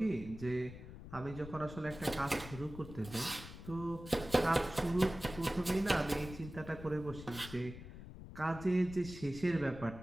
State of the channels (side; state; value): left; noise; rumble, 13 dB below the sound